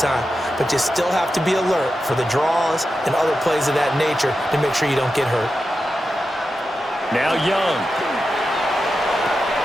But you still have to be alert for the draws and other plays of that nature to make sure you don't get hurt. Now Young.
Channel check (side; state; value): both; normal; correlation 0.90